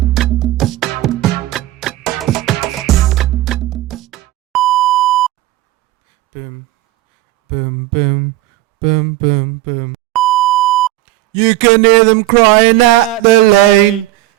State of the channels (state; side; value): quieter; left; 16.2 dB